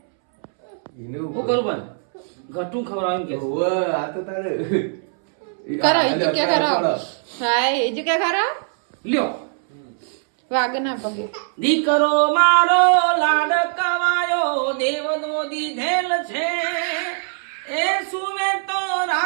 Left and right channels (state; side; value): silent; left; 65 dB below the other